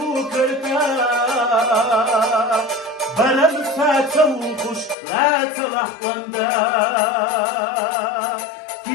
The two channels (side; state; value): right; drops out; at 5.0 s